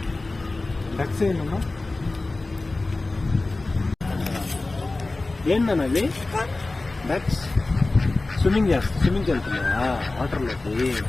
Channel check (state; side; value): quieter; right; 3.2 dB